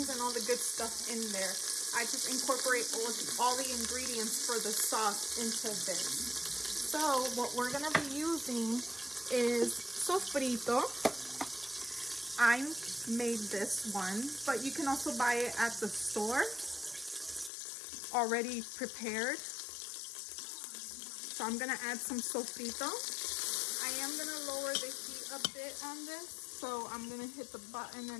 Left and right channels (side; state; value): right; drops out; at 17.5 s